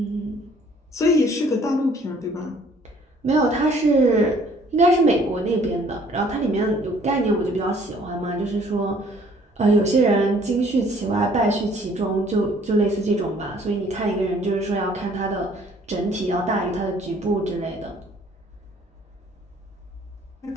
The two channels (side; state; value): both; normal; correlation 0.59